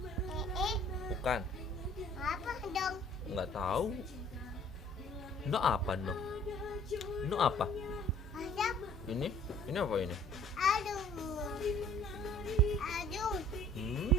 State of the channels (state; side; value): normal; both; correlation 0.54